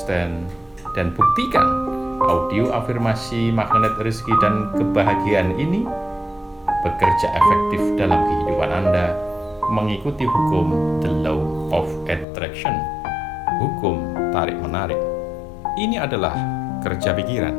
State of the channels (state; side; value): drops out; right; at 12.2 s